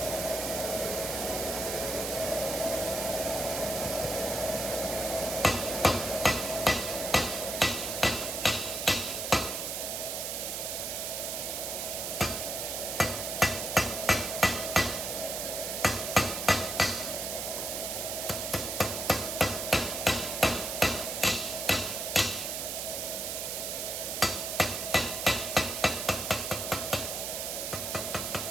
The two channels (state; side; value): noise; right; hiss, 3 dB below the sound